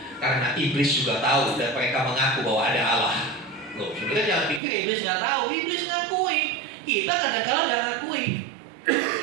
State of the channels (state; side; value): drops out; left; at 4.6 s